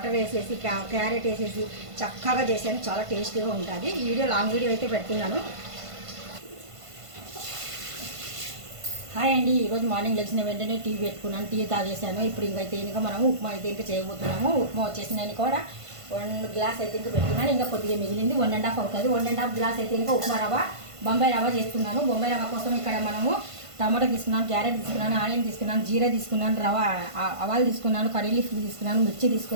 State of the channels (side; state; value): left; late; 1.5 ms